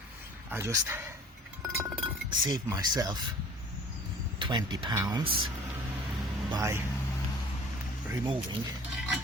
I just saved myself 20 pounds by removing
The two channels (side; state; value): both; normal; correlation 0.47